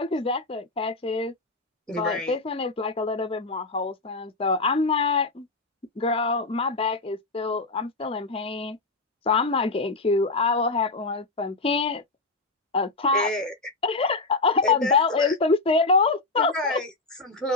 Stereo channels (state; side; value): quieter; right; 3.4 dB